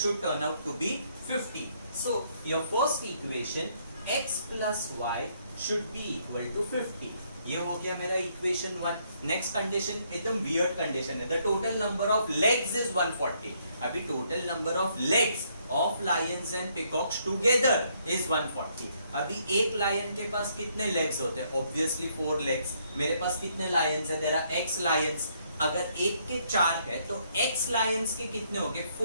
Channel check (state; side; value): inverted; both; correlation -0.70